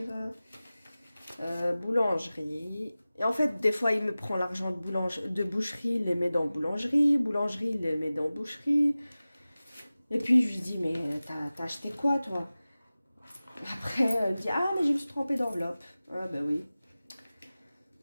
Boulangerie. Et en fait, des fois, il me prend l'argent de boucherie, il les met dans boulangerie. Boulangerie, il les met dans boucherie. Et puis, je lui dis, mais t'as acheté quoi, toi? Après, il dit, ah, mais je me suis trompée d'enveloppe. Ah, ben oui.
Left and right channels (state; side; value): inverted; both; correlation -0.97